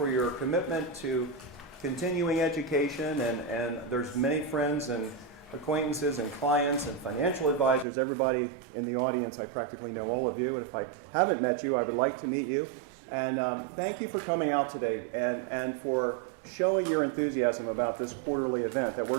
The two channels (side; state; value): left; drops out; at 7.9 s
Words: your commitment to continuing education, and there's many friends and acquaintances and clients and financial advisors, everybody in the audience. I practically know all of you, and if I haven't met you, I would like to meet you. And thank you for coming out today and for showing your enthusiasm about this quarterly event that